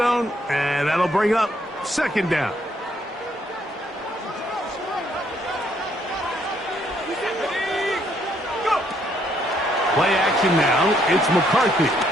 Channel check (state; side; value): normal; both; correlation 0.70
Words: and that'll bring up second down. Play action now. It's McCarthy.